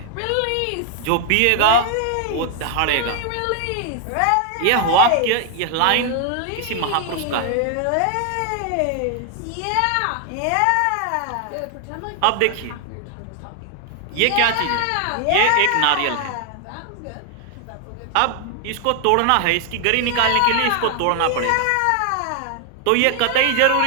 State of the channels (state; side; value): different; both; correlation 0.00